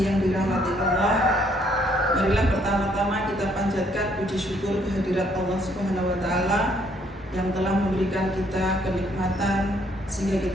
yang dirahmati Allah, marilah pertama-tama kita panjatkan puji syukur kehadirat Allah Subhanahu wa Ta'ala yang telah memberikan kita kenikmatan sehingga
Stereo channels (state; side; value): normal; both; correlation 0.67